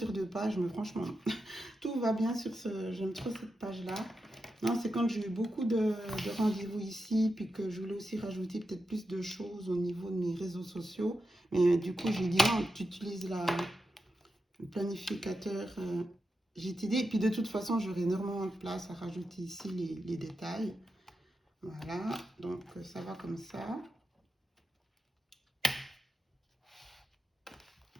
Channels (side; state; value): both; normal; correlation 0.88